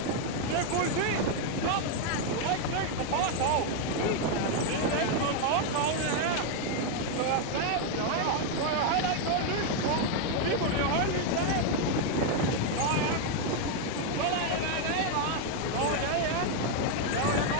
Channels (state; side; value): different; both; correlation 0.01